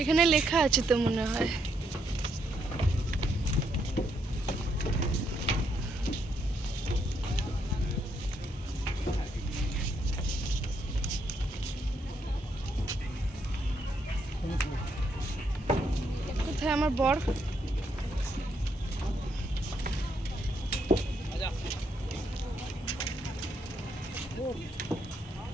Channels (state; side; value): normal; both; correlation 0.76